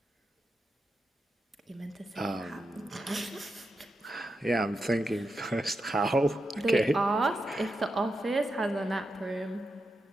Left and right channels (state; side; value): normal; both; correlation 0.87